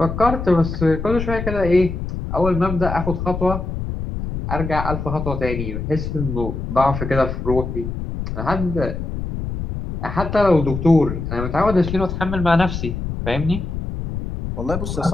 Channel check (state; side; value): noise; left; rumble, 5 dB below the sound